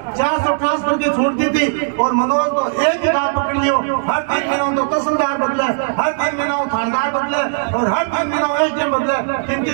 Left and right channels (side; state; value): left; silent; 62 dB below the other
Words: 400 ट्रांसफर की छूट दी थी। और मनोज तो एक ही काम पकड़ लियो, हर 3 महीनों तो तहसीलदार बदले, हर 3 महीनों थानेदार बदले और हर 3 महीनों एसडीएम बदले।